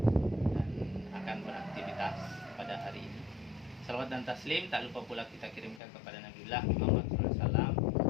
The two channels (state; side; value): drops out; right; at 5.8 s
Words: dan akan beraktivitas pada hari ini. Salawat dan taslim tak lupa pula kita kirimkan kepada Nabiullah Muhammad SAW